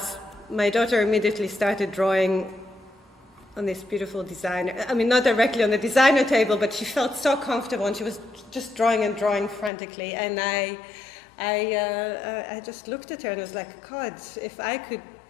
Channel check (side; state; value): right; drops out; at 9.7 s